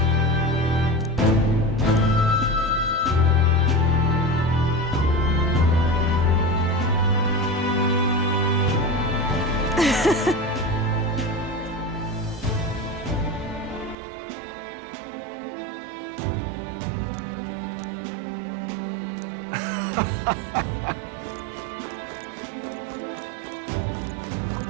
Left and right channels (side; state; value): left; drops out; at 14.0 s